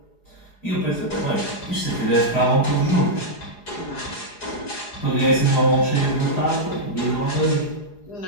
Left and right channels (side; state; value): right; late; 4.8 ms